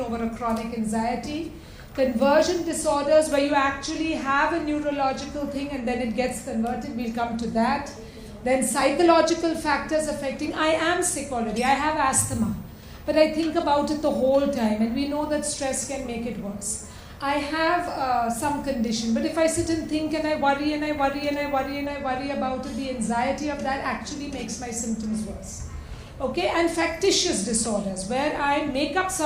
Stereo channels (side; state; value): both; identical; correlation 1.00